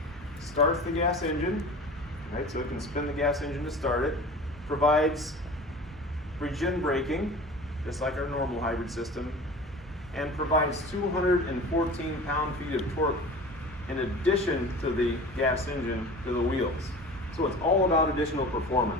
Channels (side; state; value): both; normal; correlation 0.38